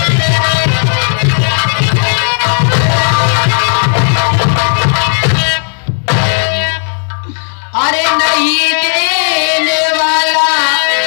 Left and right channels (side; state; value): right; silent; 65 dB below the other